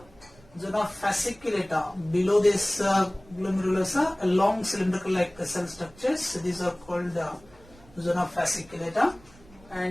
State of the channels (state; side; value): noise; right; rumble, 25 dB below the sound